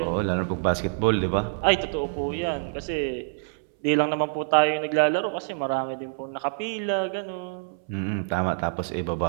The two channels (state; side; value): silent; left; 61 dB below the other